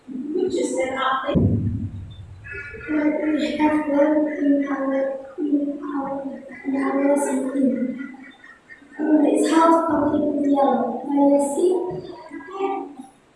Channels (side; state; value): both; identical; correlation 1.00